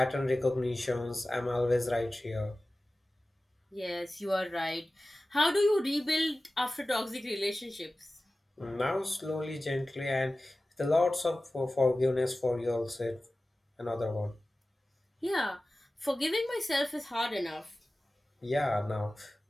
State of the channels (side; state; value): both; normal; correlation 0.96